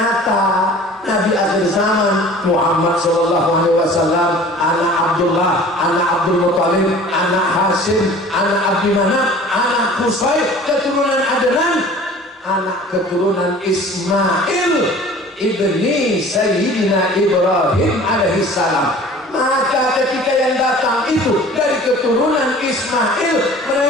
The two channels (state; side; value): normal; both; correlation 0.45